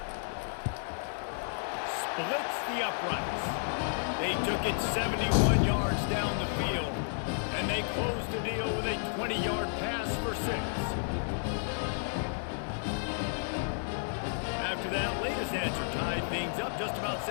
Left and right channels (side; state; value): right; silent; digital silence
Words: Splits the uprights. They took it 71 yards down the field, and they closed the deal with a 20-yard pass for 6. After that latest answer tied things up, just about